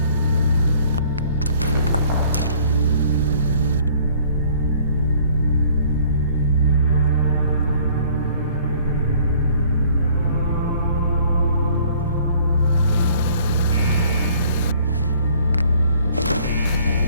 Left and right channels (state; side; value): inverted; both; correlation -0.57